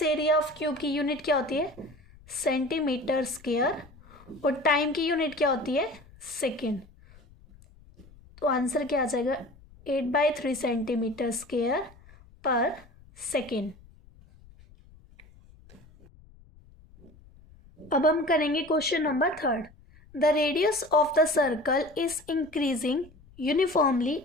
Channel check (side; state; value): left; noise; rumble, 25 dB below the sound